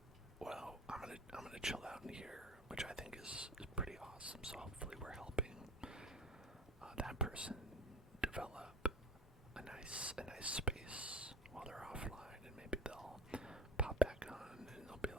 well, I'm gonna chill out in here, which I think is pretty awesome. So hopefully we're helping that person develop a nice space while they're offline, and maybe they'll pop back on and they'll be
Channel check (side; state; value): both; normal; correlation 0.36